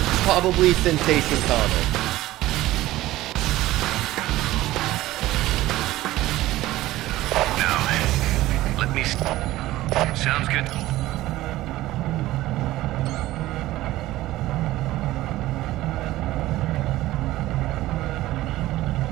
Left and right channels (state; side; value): quieter; left; 16.4 dB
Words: probably Sensation Comics. Now, let me... Sounds good.